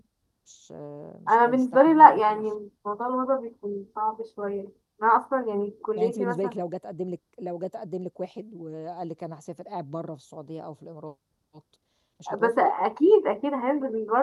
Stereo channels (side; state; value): both; identical; correlation 1.00